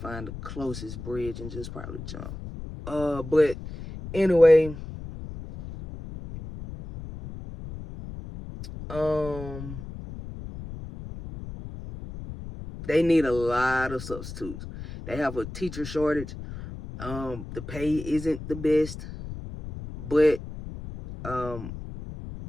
the closest bridge and just probably jump. But anyway, they need a lot of substitutes. They have a teacher shortage. The pay isn't the best, but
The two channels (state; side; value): noise; left; rumble, 11 dB below the sound